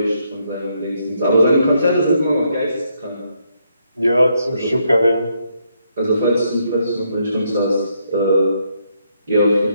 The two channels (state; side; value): inverted; both; correlation -0.75